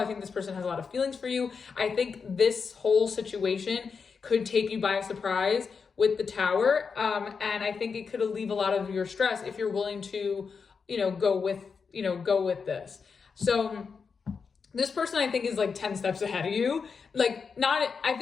think this person has a lot of feelings for you. I think this whole situation could take you by surprise with the Tower. And I think it could alleviate a lot of your stress if you're willing to, go with this. So this person I think is like 10 steps ahead of you. I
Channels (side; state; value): right; quieter; 5.5 dB